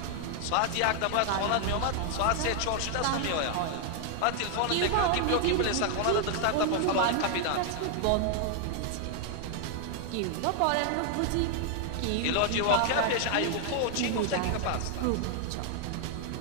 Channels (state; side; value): different; both; correlation 0.00